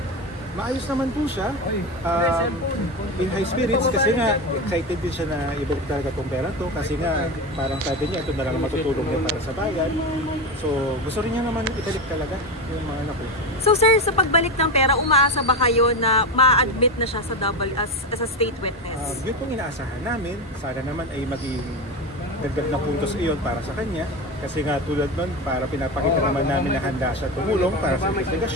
Maayos naman po siya. In high spirits kasi nga excited din siya na ibalik talaga itong pera to kasi nga parang sabi niya ito na lang matutulong niya para sa bayan. So gusto rin niya naman ibalik talaga yung mga anak ko. So sir, sa pagbalik ng pera, umaasa ba kayo na ma-admit na siya sa as a state witness? Yun pong inaasahan namin. Sana naman ay maging dagdag na puntos iyon para sa kanya. Kasi nga tulad nun, para pinapakita naman namin na handa siya tumulong para sa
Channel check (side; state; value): both; normal; correlation 0.19